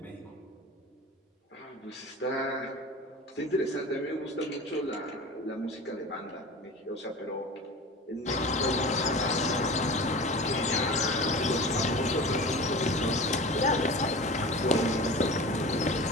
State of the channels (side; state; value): both; normal; correlation 0.35